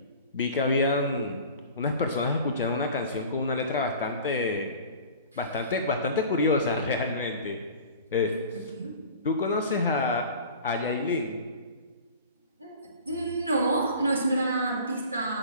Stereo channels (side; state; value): both; inverted; correlation -0.41